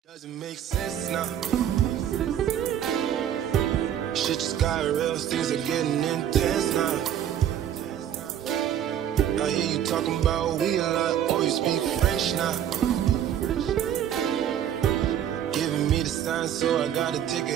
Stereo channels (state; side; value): quieter; left; 10.2 dB